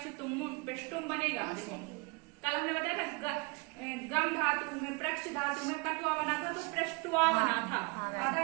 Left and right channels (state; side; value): quieter; left; 29.2 dB